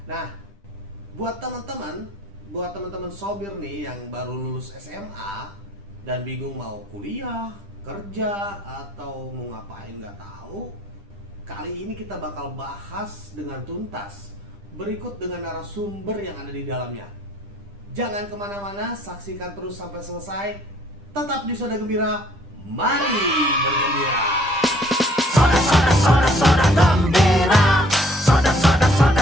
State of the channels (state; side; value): normal; both; correlation 0.61